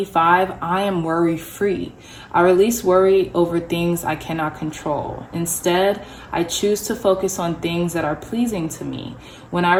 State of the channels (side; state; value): both; identical; correlation 1.00